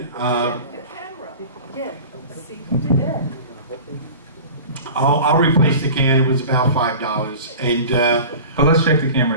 I'll replace the can. It was about $5, and But let's check the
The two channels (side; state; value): both; inverted; correlation -0.38